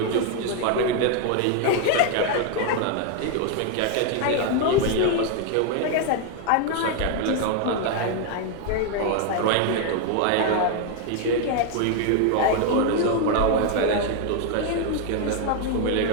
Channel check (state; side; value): different; both; correlation 0.01